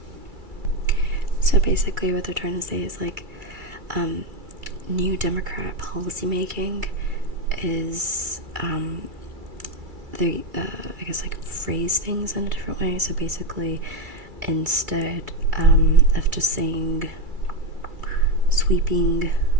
So basically what they're trying to say is like New Democrat policymaking is they I guess like phrase things in a different way. So basically instead of just saying sweeping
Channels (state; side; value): late; left; 2.3 ms